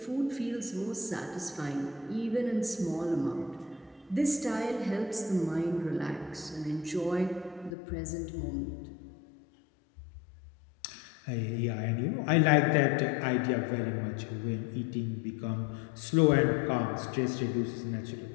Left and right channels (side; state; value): right; drops out; at 7.8 s